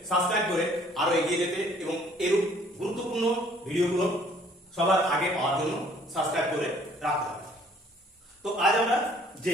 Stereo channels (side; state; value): both; normal; correlation 0.59